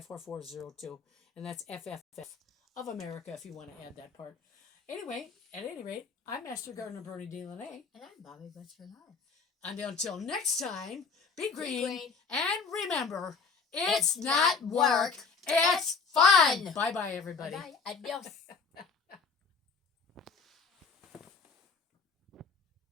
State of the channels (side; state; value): right; quieter; 5.2 dB